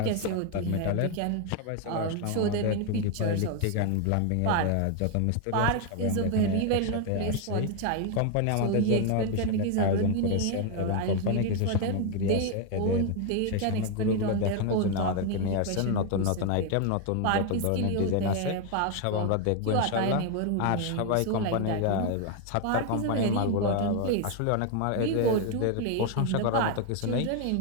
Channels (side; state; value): both; different; correlation 0.01